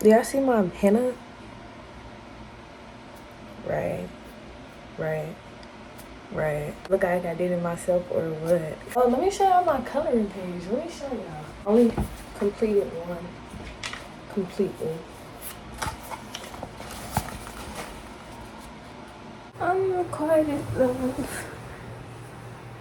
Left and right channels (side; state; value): both; identical; correlation 1.00